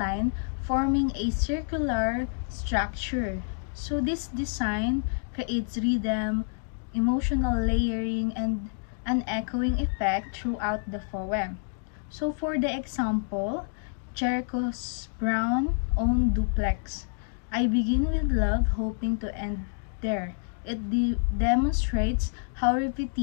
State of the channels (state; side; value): silent; right; digital silence